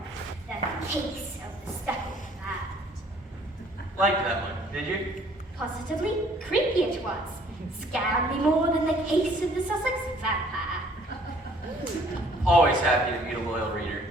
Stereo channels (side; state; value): both; normal; correlation 0.58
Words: the case of the speckled cat. Like that one, did you? Positively creepy it was. Scared me more than the case of the Sussex vampire. Always happy to meet a loyal reader.